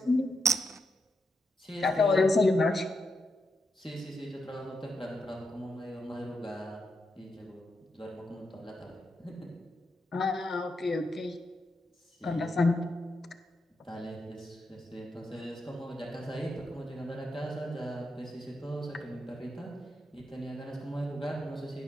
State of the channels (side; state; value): both; normal; correlation 0.84